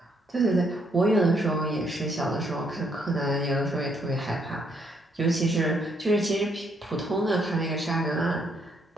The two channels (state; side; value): normal; both; correlation 0.72